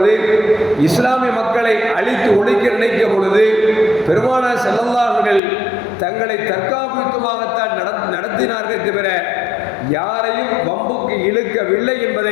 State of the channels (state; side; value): drops out; right; at 5.4 s